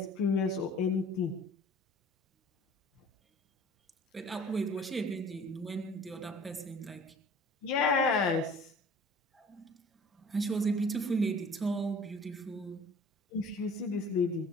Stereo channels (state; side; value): normal; both; correlation 0.48